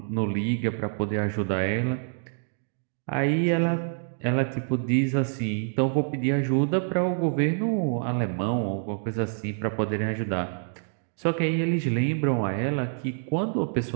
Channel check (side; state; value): left; silent; digital silence